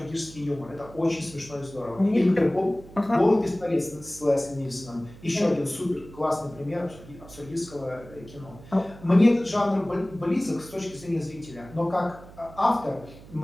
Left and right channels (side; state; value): right; noise; hum, 19 dB below the sound